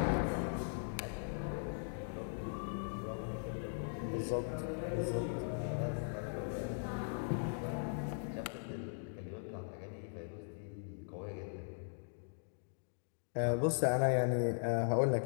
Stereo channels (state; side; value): silent; right; digital silence